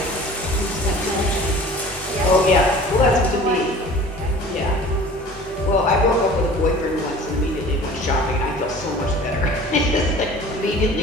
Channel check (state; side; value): normal; both; correlation 0.44